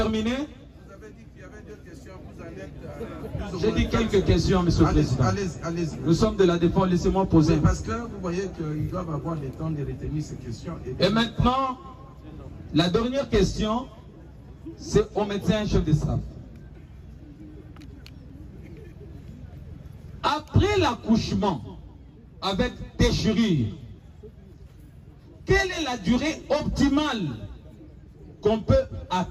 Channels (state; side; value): identical; both; correlation 1.00